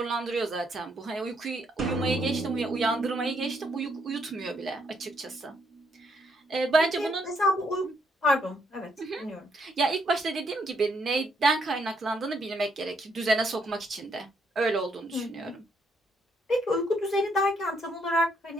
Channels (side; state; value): both; normal; correlation 0.73